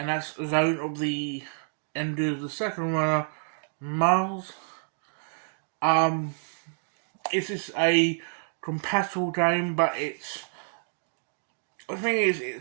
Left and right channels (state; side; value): silent; left; digital silence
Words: that's Zone of the End of the Second Runner, Mars. It's just a compatible game, but the thing is,